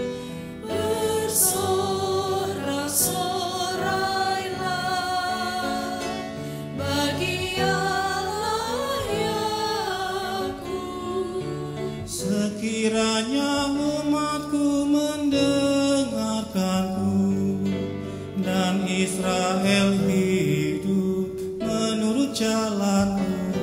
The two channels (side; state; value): both; identical; correlation 1.00